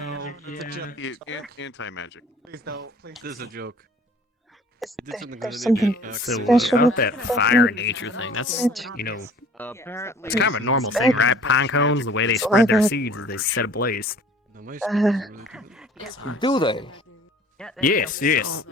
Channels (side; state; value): both; normal; correlation 0.50